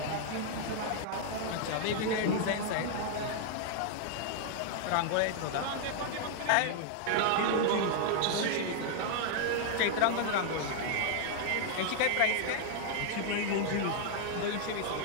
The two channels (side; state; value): both; different; correlation -0.01